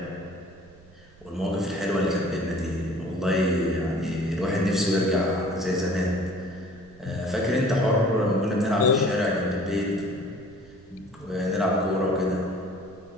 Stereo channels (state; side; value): noise; right; rumble, 25 dB below the sound